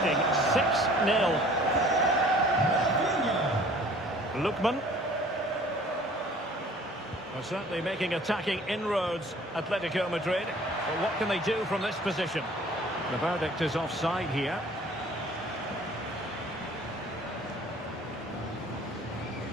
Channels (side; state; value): both; normal; correlation 0.51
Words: 6-0. Lookman. Well, certainly making attacking inroads, Atletico Madrid. But what can they do from this position? The verdict is offside here.